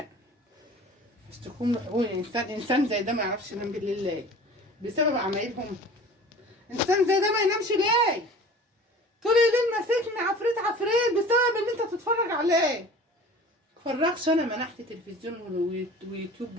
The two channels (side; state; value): both; normal; correlation 0.42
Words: اشتكوهم لحقوق الانسان. انسان زي ده ما يعرفش ينام بالليل ليه؟ بسبب عمايلهم. انسان زي ده ما ينامش ليه؟ طول الليل ماسكني عفريت عفريت بسبب ان انت تتفرج عليه. متفرجش انا منحت تلفزيون